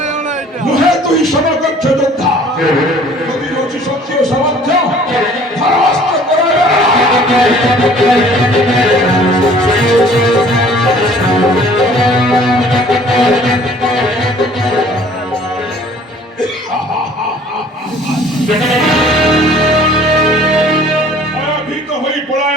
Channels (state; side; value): normal; both; correlation 0.53